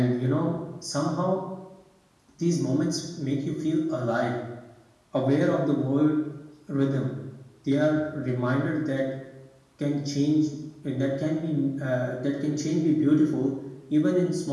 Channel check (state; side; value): identical; both; correlation 1.00